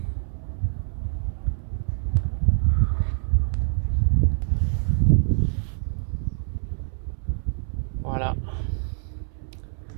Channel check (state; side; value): silent; left; 61 dB below the other